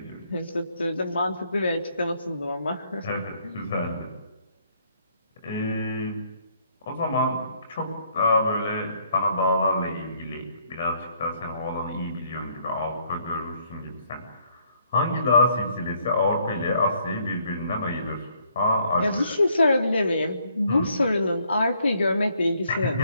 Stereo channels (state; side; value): inverted; both; correlation -0.67